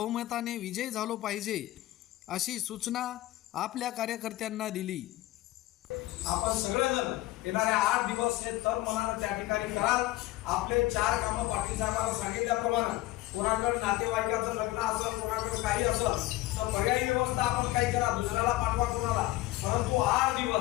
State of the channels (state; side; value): quieter; right; 17.3 dB